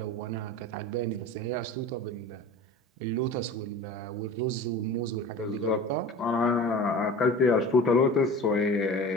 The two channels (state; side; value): normal; both; correlation 0.37